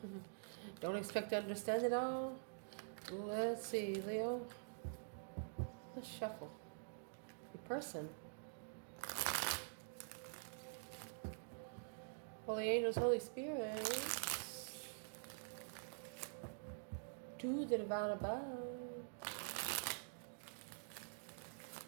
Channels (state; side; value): silent; left; digital silence